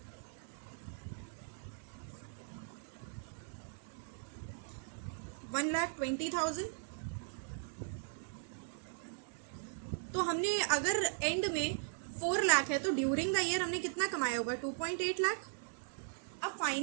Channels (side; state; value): left; silent; digital silence